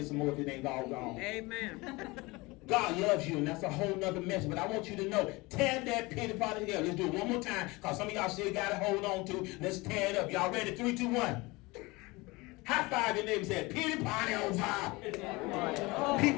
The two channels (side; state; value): right; quieter; 23.5 dB